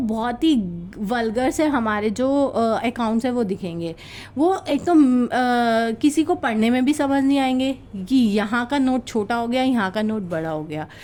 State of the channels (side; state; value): both; identical; correlation 1.00